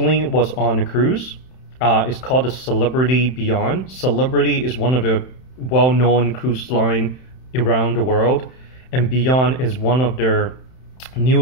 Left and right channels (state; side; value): late; right; 31 ms